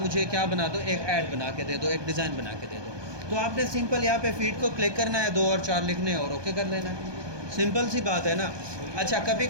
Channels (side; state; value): left; late; 1.2 ms